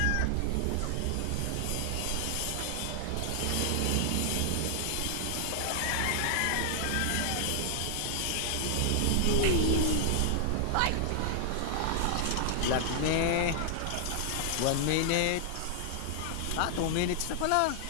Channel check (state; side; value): different; both; correlation 0.00